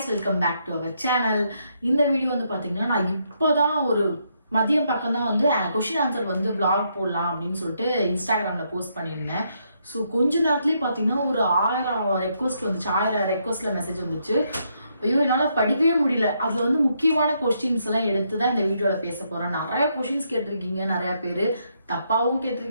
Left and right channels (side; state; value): both; inverted; correlation -0.76